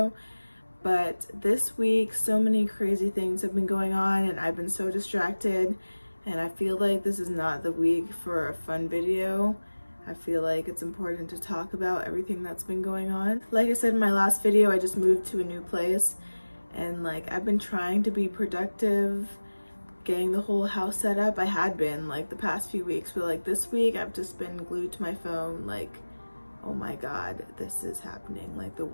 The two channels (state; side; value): inverted; both; correlation -1.00